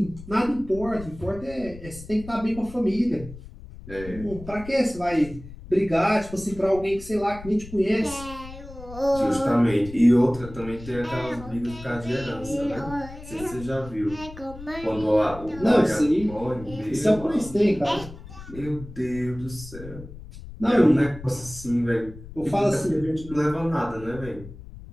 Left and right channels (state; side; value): noise; left; rumble, 15 dB below the sound